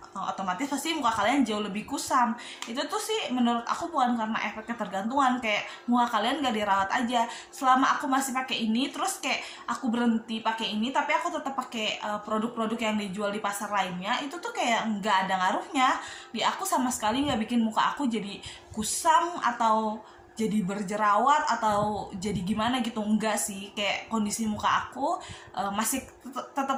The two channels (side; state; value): both; identical; correlation 1.00